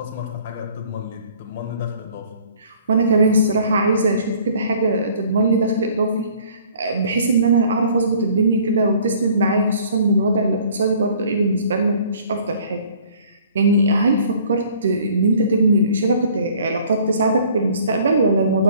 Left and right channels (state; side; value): inverted; both; correlation -0.55